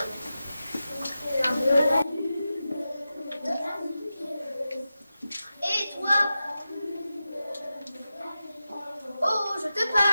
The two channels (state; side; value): inverted; both; correlation -0.92